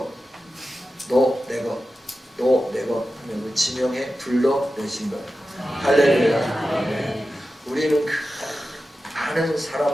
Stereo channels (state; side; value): normal; both; correlation 0.93